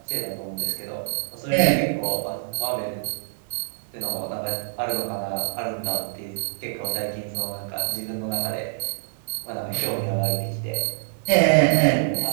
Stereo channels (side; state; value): left; silent; digital silence